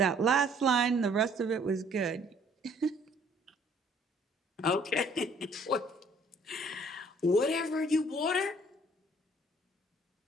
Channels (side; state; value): both; normal; correlation 0.59